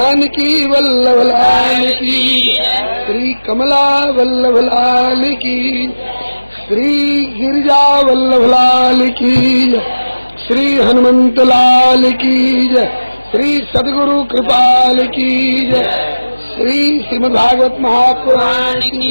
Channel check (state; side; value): inverted; both; correlation -1.00